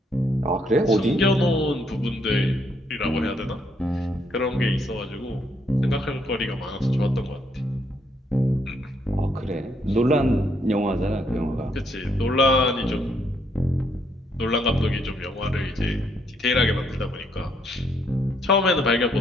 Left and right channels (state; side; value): normal; both; correlation 0.72